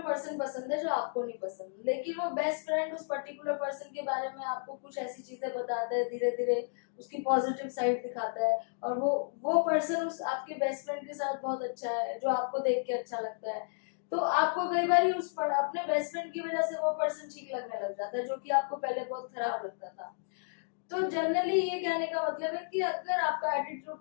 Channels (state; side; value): silent; right; digital silence